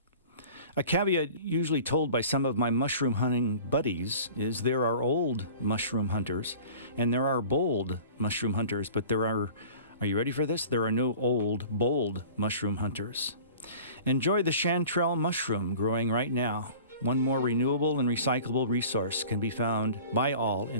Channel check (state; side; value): inverted; both; correlation -0.43